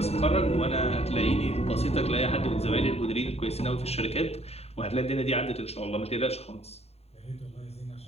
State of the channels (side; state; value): right; late; 0.30 ms